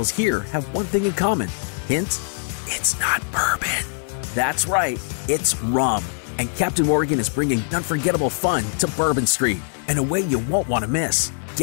here have one thing in common? Hint, it's not bourbon. That's right, it's rum. And Captain Morgan is bringing unforgettable fun to Bourbon Street in a way you won't want to miss.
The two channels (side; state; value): right; silent; digital silence